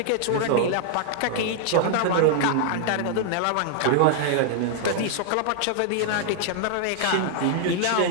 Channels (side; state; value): both; different; correlation 0.00